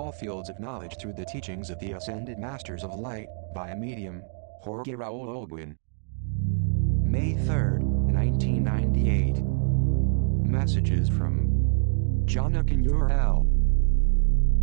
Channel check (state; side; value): silent; left; digital silence